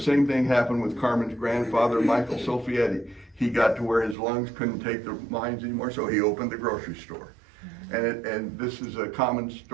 thing happened with Carmen's grandfather, Michael Sofietti. He got to where his lungs couldn't take the mines anymore, so he opened the grocery store. And this is a common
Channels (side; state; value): left; drops out; at 4.2 s